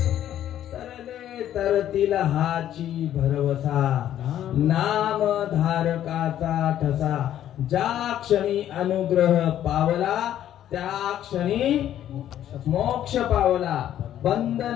तरतील हाची भरवसा, नाम धारकाचा ठसा, ज्या क्षणी अनुग्रह पावला त्या क्षणी मोक्ष पावला. बंधन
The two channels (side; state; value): right; quieter; 11.4 dB